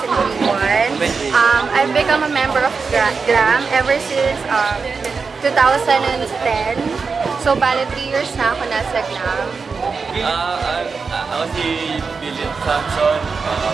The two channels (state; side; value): quieter; left; 5.0 dB